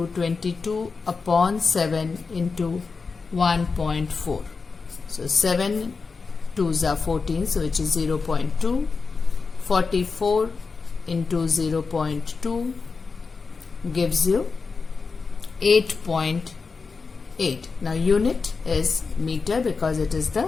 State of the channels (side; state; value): right; quieter; 4.7 dB